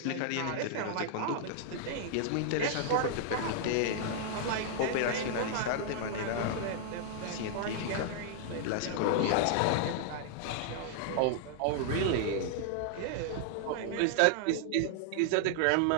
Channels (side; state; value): both; different; correlation -0.01